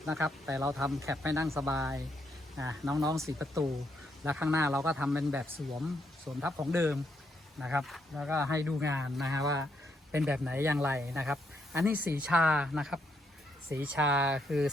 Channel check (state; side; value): normal; both; correlation 0.76